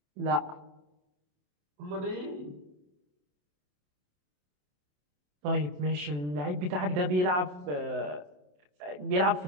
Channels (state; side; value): late; left; 27 ms